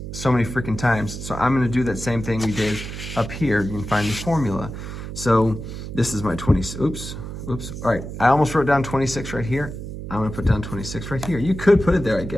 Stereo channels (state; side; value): noise; right; hum, 8 dB below the sound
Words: so many freaking times. So I'm going to do that same thing we did up here. You can find the formula. So this is my 20, oops. All right, I almost wrote down 26 right here. I'm going to put down 26 right here. You could put it there, I